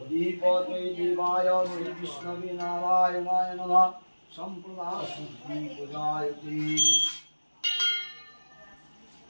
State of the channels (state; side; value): inverted; both; correlation -1.00